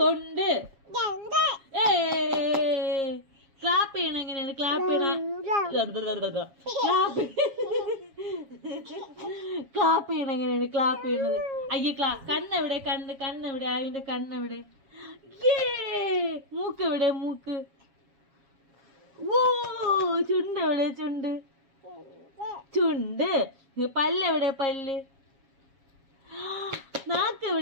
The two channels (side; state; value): left; late; 7.4 ms